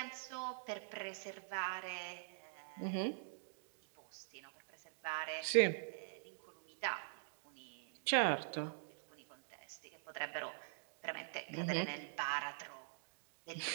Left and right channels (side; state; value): left; silent; digital silence